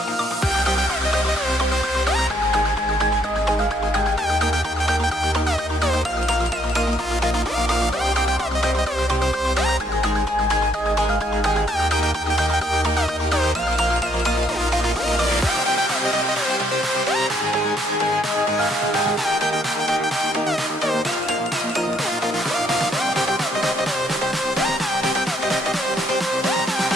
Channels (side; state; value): both; normal; correlation 0.70